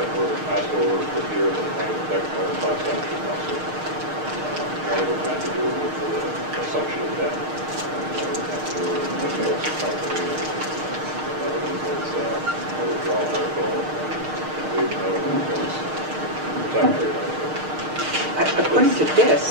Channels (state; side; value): late; left; 6.5 ms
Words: were passed over for here that might affect our class action lawsuit. One of them had to do with the assumption of debt. One of them had to do with the loss of property. Another one was a withdrawal article. Another one was the tax rate article. According to